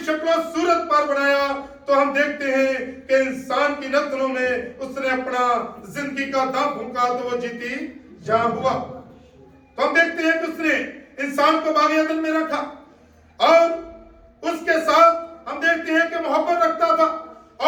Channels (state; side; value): identical; both; correlation 1.00